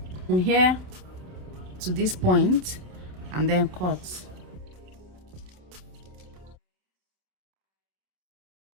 to this point and then cut.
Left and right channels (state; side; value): late; left; 28 ms